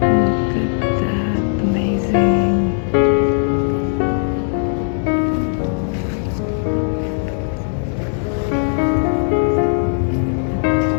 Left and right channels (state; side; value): silent; right; digital silence